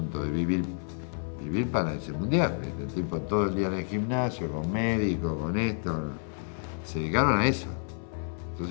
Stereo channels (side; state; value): right; silent; 58 dB below the other